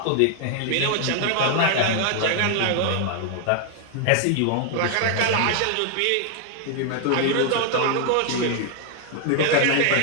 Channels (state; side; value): different; both; correlation 0.00